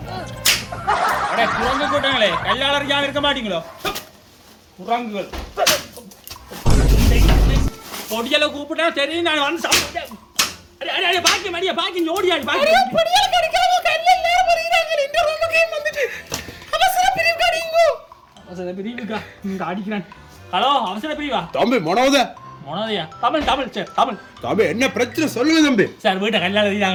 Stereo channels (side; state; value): both; identical; correlation 1.00